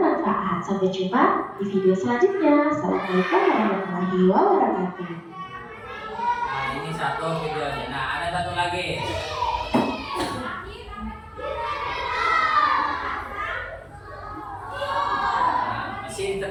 Sampai jumpa di video selanjutnya. Assalamualaikum warahmatullahi wabarakatuh. Nah, ini satu videonya. Nah, ada satu lagi. Nah, mesin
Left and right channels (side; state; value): both; identical; correlation 1.00